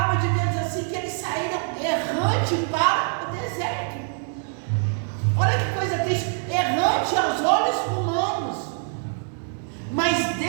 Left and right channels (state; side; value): silent; left; 56 dB below the other